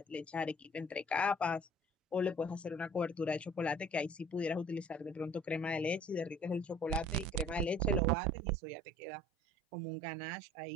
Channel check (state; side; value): drops out; left; at 8.0 s